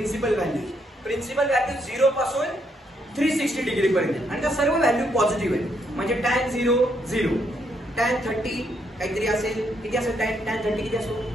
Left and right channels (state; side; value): normal; both; correlation 0.75